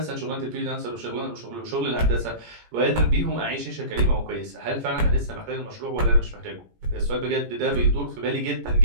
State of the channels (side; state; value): left; late; 17 ms